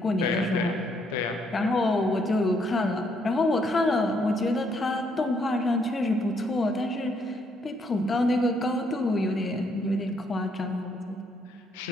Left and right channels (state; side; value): normal; both; correlation 0.72